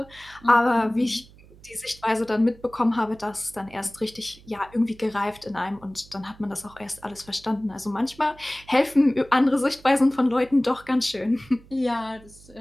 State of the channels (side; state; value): right; noise; hum, 24 dB below the sound